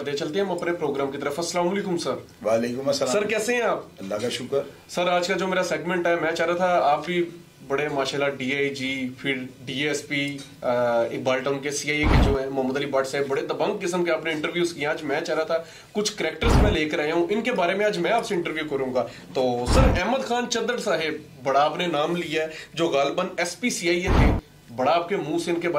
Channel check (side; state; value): both; identical; correlation 1.00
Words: दे। चलते हैं हम अपने प्रोग्राम की तरफ। अस्सलाम वालेकुम सर। वालेकुम अस्सलाम सर, कैसे हैं आप? अल्लाह का शुक्र। सर, आज का जो मेरा सेगमेंट है, मैं चाह रहा था आप भी बड़े माशाल्लाह डीआईजी, फिर डीएसपी, इकबाल टाउन के सीआईए के जो है मोहम्मद अली भट्ट साहब, बड़े दबंग किस्म के आपने इंटरव्यूज किए। आज मैं चाह रहा था कुछ कैरेक्टर्स मैं लेकर आया हूं, इनके बारे में आज मैं आपसे इंटरव्यू करूंगा। तो सर, अहमद खान चद्दड़ साहब, बड़ा आपने नाम लिया है, जो गालिबन एसपी सीआईए थे, बड़ा आपके मुंह से इनके